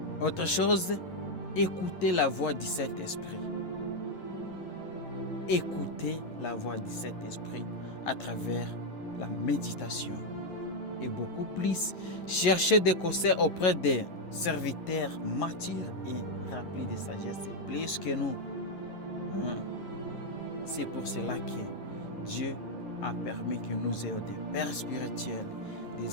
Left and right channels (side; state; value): right; late; 11 ms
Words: Autre chose, écoutez la voix du Saint-Esprit. Écoutez la voix du Saint-Esprit à travers la méditation. Et beaucoup plus, cherchez des conseils auprès des serviteurs matures et remplis de sagesse, plus que nous. C'est pour cela que Dieu a permis que nous ayons des pères spirituels,